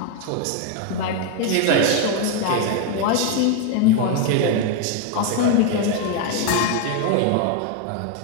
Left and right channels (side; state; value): both; different; correlation 0.01